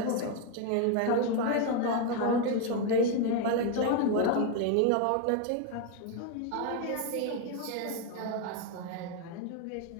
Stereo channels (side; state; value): both; different; correlation 0.01